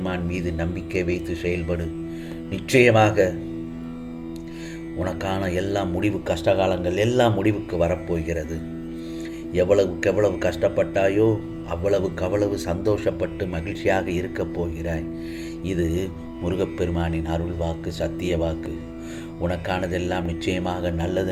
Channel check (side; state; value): both; identical; correlation 1.00